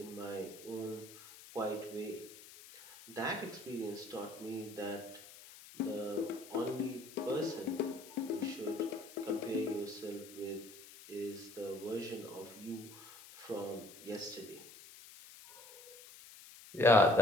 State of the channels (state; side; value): noise; left; hiss, 17 dB below the sound